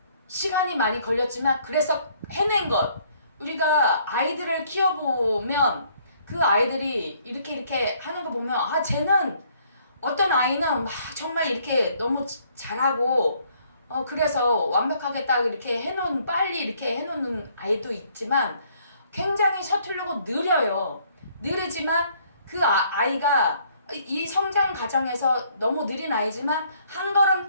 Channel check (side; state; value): both; inverted; correlation -0.64